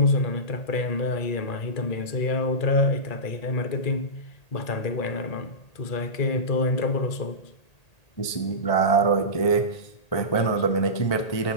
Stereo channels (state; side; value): late; right; 1.8 ms